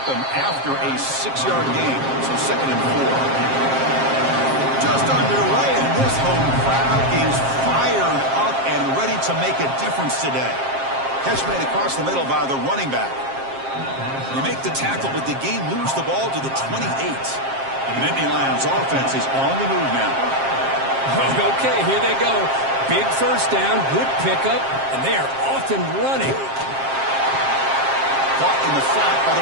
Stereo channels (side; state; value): left; late; 7.5 ms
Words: him after a 6-yard gain, so 2nd and 4. Just underway, and this home crowd is fired up and ready to make a difference today. Catch made across the middle by the running back. You make the tackle, but the game moves the ball to the 28. The Nittany Lions offense is on the move now. Okay, here they go. Big first down, good pickup, and they are off and running. Caught in the flat by the